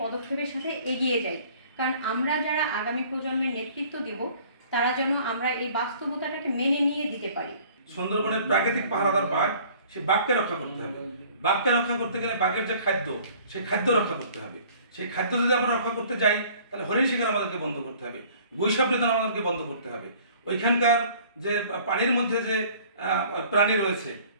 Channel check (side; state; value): both; inverted; correlation -0.53